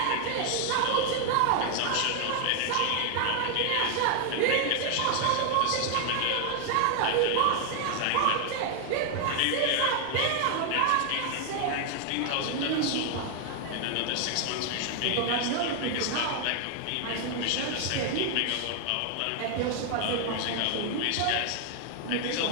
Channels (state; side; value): different; both; correlation 0.00